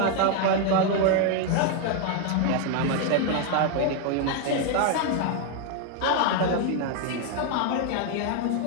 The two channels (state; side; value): different; both; correlation 0.01